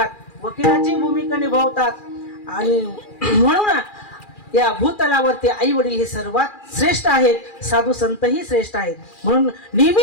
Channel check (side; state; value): right; late; 2.4 ms